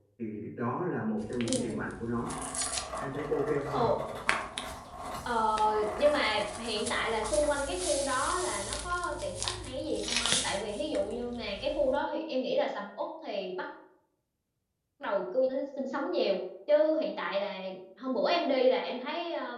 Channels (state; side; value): identical; both; correlation 1.00